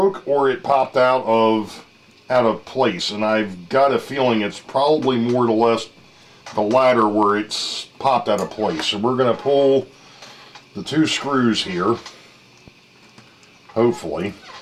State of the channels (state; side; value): identical; both; correlation 1.00